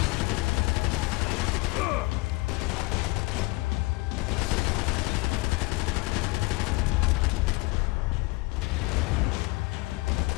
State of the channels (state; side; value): quieter; right; 23.7 dB